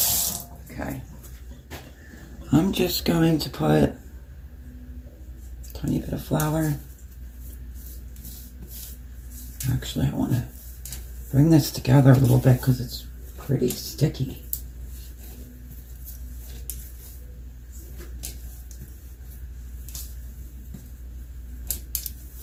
Okay. I'm just going to put a tiny bit of flour. Actually, I want to bring this together a little bit because it's pretty sticky.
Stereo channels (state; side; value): identical; both; correlation 1.00